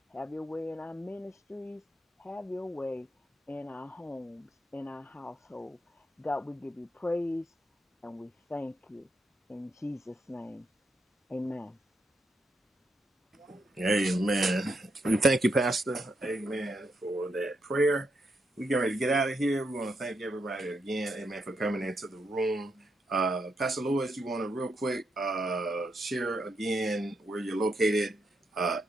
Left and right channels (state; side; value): normal; both; correlation 0.81